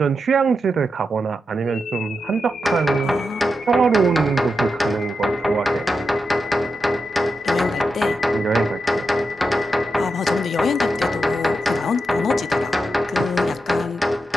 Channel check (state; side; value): normal; both; correlation 0.87